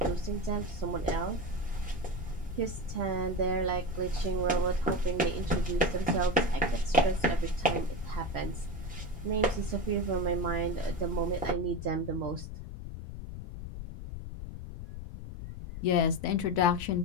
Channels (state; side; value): noise; left; rumble, 9 dB below the sound